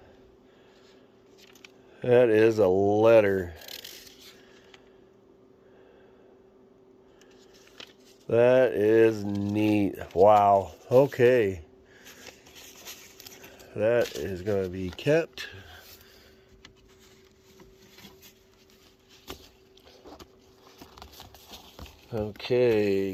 That is a letter. That is neat. Wow. Okay. That is going to be kept.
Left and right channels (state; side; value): identical; both; correlation 1.00